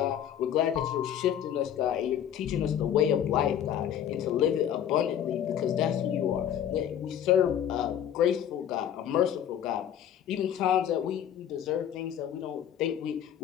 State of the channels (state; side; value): quieter; right; 9.9 dB